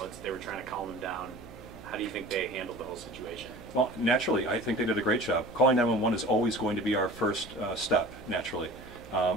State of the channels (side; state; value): right; noise; hum, 18 dB below the sound